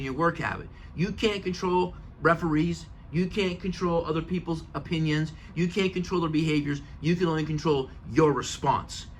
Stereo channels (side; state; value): both; identical; correlation 1.00